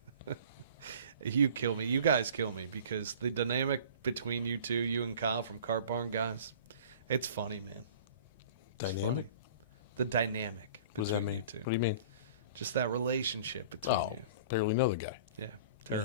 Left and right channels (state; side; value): inverted; both; correlation -0.45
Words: you kill me. You guys kill me because the dynamic between you two, you and Kyle from Cart Barn, guys, it's funny, man. It's funny. The dynamic between you two. What do you mean? Just that relationship between you. Barely know the guy. Yeah,